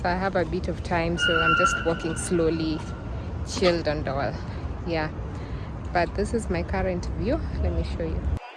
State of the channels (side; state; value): both; identical; correlation 1.00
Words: I have a bit of time, so I'm just walking slowly, chilled and all. Yeah, but this is my current view. Let me show you.